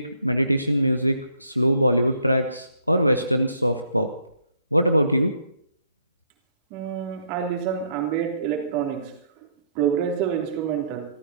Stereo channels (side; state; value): both; inverted; correlation -0.67